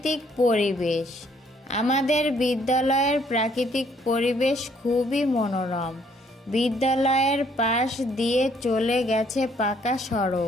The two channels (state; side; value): normal; both; correlation 0.65